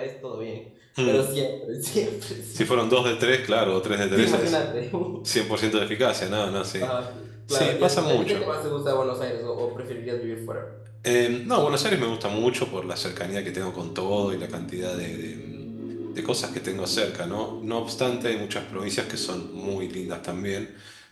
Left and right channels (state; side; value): identical; both; correlation 1.00